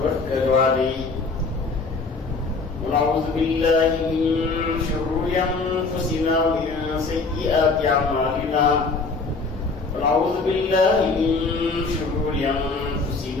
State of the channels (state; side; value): quieter; right; 4.0 dB